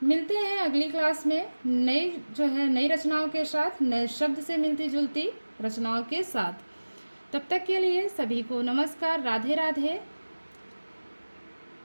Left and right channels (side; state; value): both; inverted; correlation -1.00